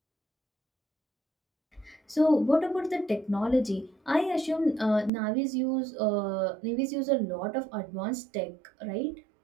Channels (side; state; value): left; drops out; at 5.1 s